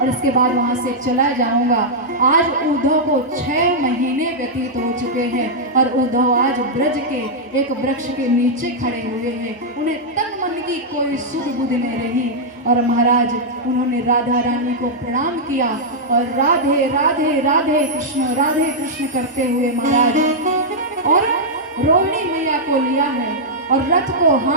इसके बाद वहां से चला जाऊंगा। आज उद्धव को 6 महीने व्यतीत हो चुके हैं और उद्धव आज ब्रज के एक वृक्ष के नीचे खड़े हुए हैं। उन्हें तन मन की कोई सुध बुध नहीं रही और महाराज उन्होंने राधा रानी को प्रणाम किया और राधे राधे राधे कृष्ण करते हुए महाराज और रोहिणी मैया को लिया है और रथ को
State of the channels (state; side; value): normal; both; correlation -0.07